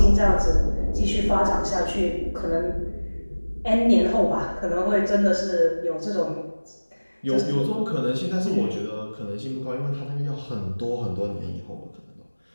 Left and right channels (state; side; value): inverted; both; correlation -1.00